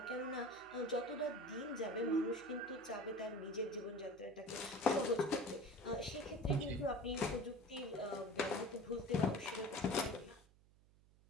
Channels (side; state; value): right; noise; hum, 27 dB below the sound